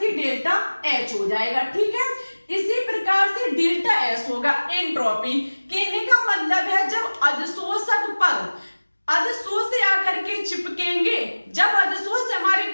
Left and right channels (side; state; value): both; inverted; correlation -1.00